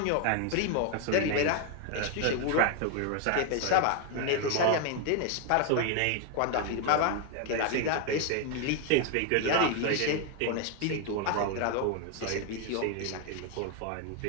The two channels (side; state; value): both; different; correlation 0.01